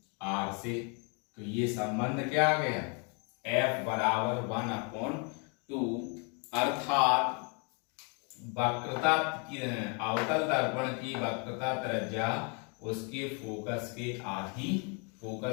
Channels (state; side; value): quieter; right; 35.7 dB